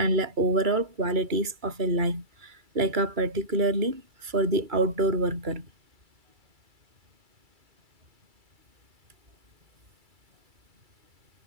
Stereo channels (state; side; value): late; left; 2.3 ms